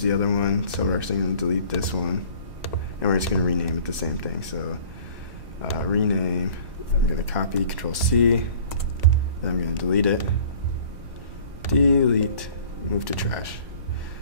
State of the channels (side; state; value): left; late; 1.1 ms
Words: the other one, so we're actually going to delete this one, and we're just going to rename it the same thing. So rename, I'm going to copy, Control-C, then I'm going to delete it, delete, move to trash,